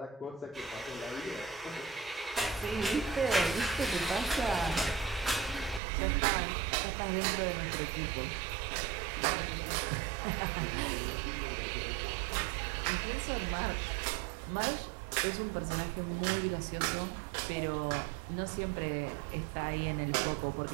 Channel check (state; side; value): drops out; left; at 5.8 s